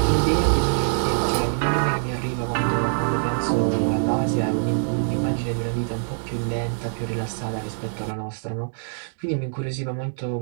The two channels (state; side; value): silent; left; digital silence